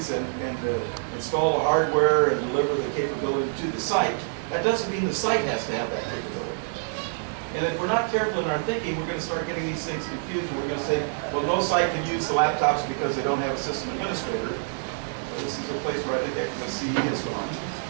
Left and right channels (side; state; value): left; silent; digital silence